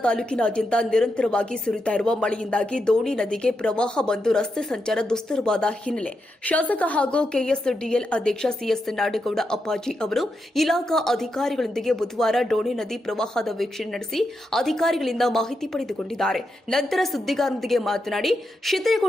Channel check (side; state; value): both; normal; correlation 0.85